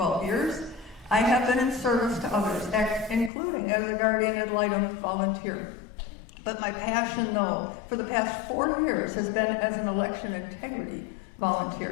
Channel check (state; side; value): drops out; right; at 3.3 s